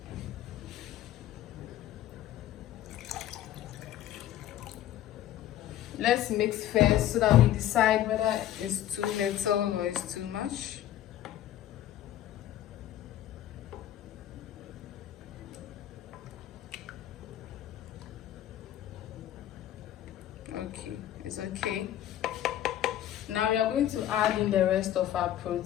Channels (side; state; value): right; quieter; 12.4 dB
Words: Let's mix first so that we decide whether it's too little or it's too much. Okay, it's okay. Now we are going to add in the rest of our